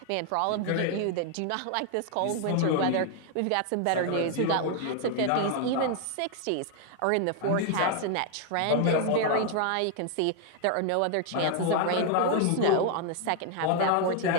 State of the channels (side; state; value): both; different; correlation 0.00